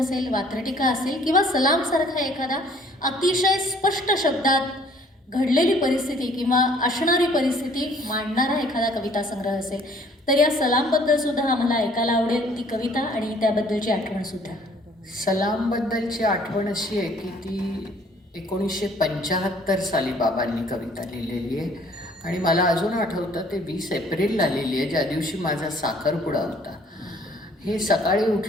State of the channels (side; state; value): both; normal; correlation 0.57